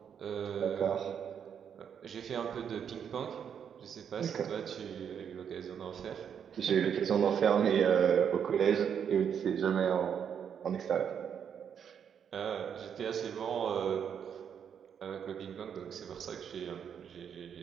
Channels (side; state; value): left; quieter; 7.9 dB